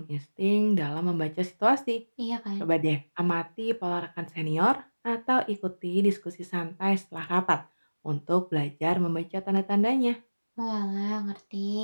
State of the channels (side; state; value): both; inverted; correlation -1.00